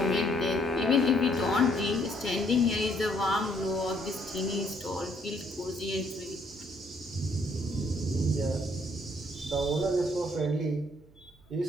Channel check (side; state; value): right; noise; hum, 28 dB below the sound